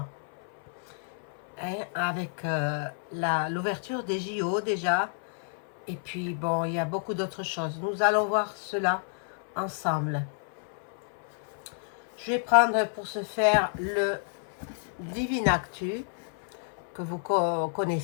Avec l'ouverture des JO déjà. Et puis, bon, il y a beaucoup d'autres choses. Nous allons voir cela ensemble. Je vais prendre pour ce faire le Divine Actu, que vous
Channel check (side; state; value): right; silent; 58 dB below the other